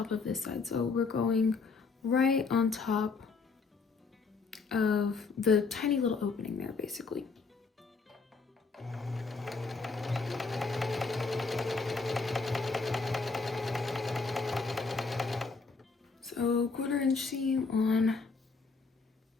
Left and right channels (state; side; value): quieter; right; 4.4 dB